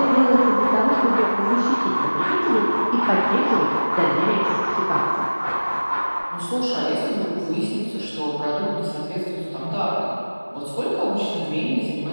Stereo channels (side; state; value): both; inverted; correlation -1.00